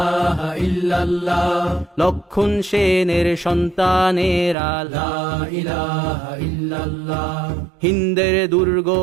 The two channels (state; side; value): drops out; left; at 4.5 s